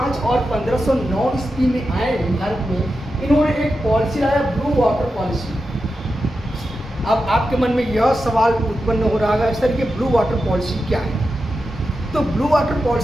और 1509 ईस्वी में आए भारत में, इन्होंने एक पॉलिसी लाया, ब्लू वाटर पॉलिसी। अब आपके मन में यह सवाल उत्पन्न हो रहा है सर, ये ब्लू वाटर पॉलिसी क्या है? तो ब्लू वाटर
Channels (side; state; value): both; normal; correlation 0.90